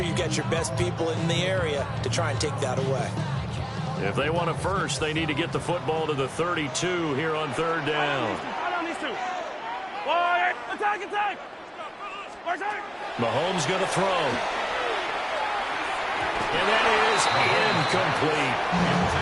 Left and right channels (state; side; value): identical; both; correlation 1.00